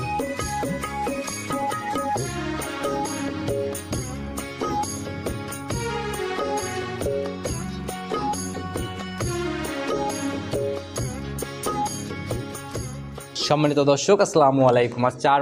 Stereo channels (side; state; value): both; identical; correlation 1.00